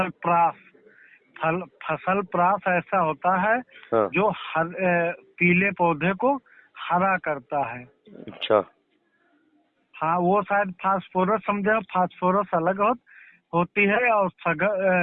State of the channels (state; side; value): identical; both; correlation 1.00